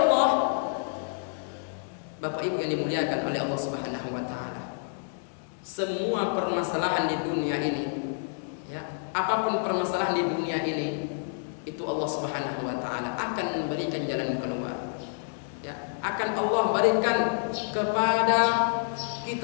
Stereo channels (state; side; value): silent; right; digital silence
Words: Bapak Ibu yang dimuliakan oleh Allah Subhanahu wa taala, semua permasalahan di dunia ini, ya, apapun permasalahan di dunia ini, itu Allah Subhanahu wa taala akan memberikan jalan keluar. Ya, akan Allah berikan kepada